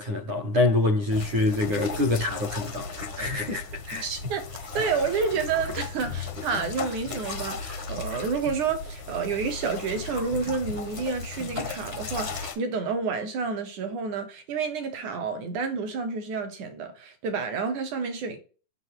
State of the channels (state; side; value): late; left; 9.8 ms